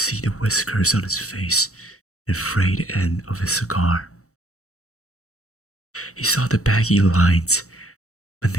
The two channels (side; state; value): right; late; 0.64 ms